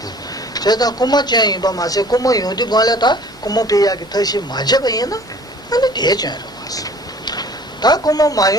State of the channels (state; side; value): normal; both; correlation 0.50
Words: 제가 고마 쟁이 봐 마세 고마 요도 걸래다 고마 비야기 다시 맞아 봐야나 아니 되잖아 왔어 다 고마